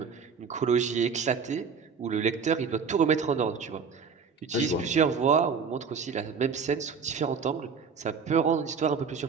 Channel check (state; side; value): quieter; left; 5.8 dB